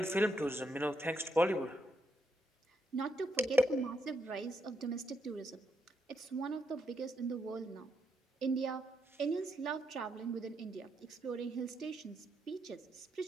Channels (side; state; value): both; normal; correlation 0.78